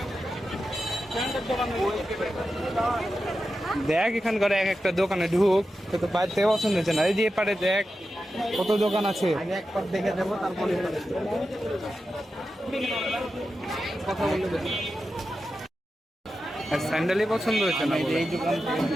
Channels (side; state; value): both; normal; correlation 0.91